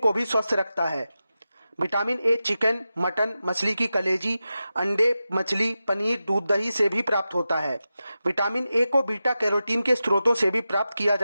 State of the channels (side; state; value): both; inverted; correlation -0.93